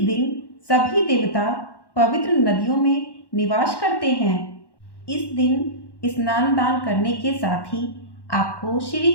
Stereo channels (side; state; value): right; late; 1.1 ms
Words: दिन सभी देवता पवित्र नदियों में निवास करते हैं। इस दिन स्नान दान करने के साथ ही आपको श्री